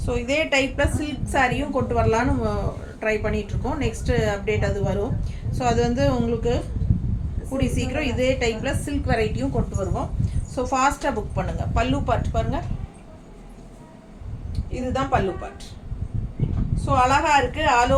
ஸோ இதே டைப்பில் சில்க் சாரியும் கொண்டு வரலான்னு ட்ரை பண்ணிகிட்ருக்கோம். நெக்ஸ்ட்டு அப்டேட் அது வரும். ஸோ அது வந்து உங்களுக்கு கூடி சீக்கிரம் இதே டைப்பில் சில்க் வெரைட்டியும் கொண்டு வருவோம். ஸோ ஃபாஸ்ட்டாக புக் பண்ணுங்கள். பல்லு பார்ட் பாருங்கள், இதுதான் பல்லு பார்ட். ஸோ அழகாக இருக்குது. ஆல்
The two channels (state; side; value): identical; both; correlation 1.00